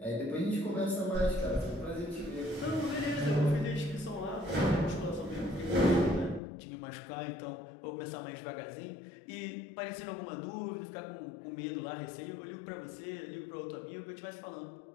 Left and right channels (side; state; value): right; drops out; at 6.4 s